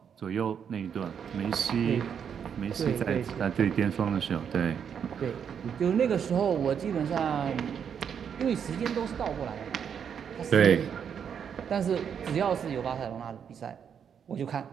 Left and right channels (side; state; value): left; quieter; 7.7 dB